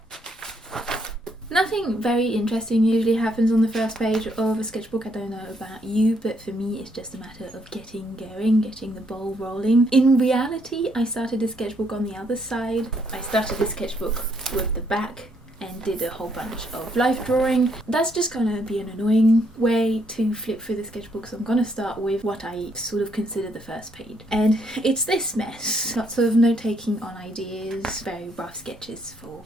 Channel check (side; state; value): both; normal; correlation 0.72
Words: Nothing very interesting usually happens on the first page of a sketchbook. I don't know about you, but for me it's just a matter of getting going, getting the ball rolling. In reality, I started the sketchbook on the other side. I started the sketchbook with the back and did a whole bunch of life drawing. That's just gonna be an annoying way to flip through the sketchbook, so I'm gonna start with what I sort of consider the first page. And it's this mess. Lots of note taking on ideas, very rough sketches for